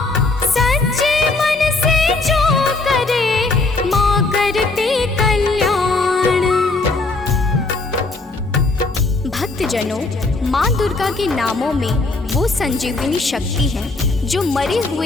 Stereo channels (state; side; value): quieter; right; 3.4 dB